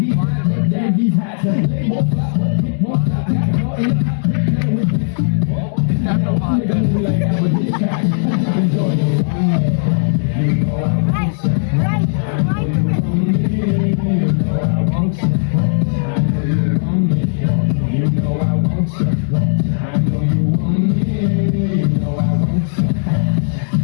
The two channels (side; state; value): right; silent; digital silence